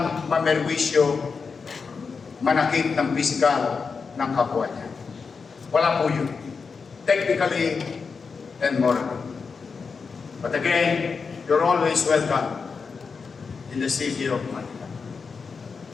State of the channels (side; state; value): right; quieter; 5.2 dB